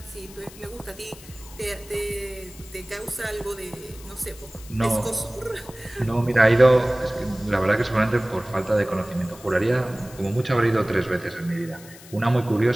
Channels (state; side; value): noise; left; hiss, 19 dB below the sound